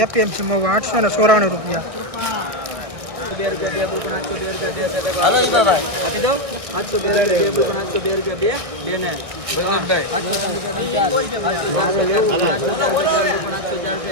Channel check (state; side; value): late; left; 1.6 ms